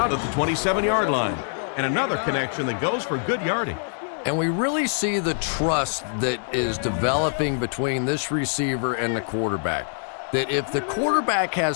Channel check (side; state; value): right; silent; 62 dB below the other